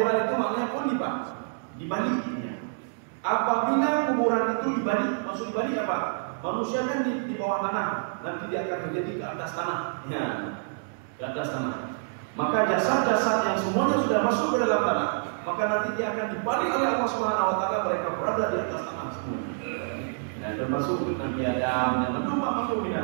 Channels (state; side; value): silent; left; digital silence